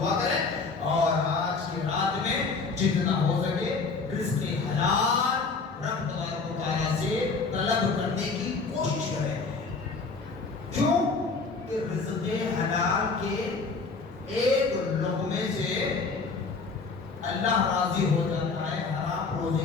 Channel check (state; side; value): quieter; right; 4.4 dB